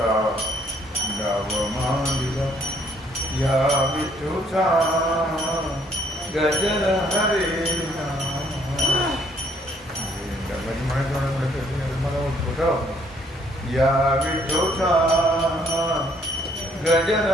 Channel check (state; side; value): normal; both; correlation 0.65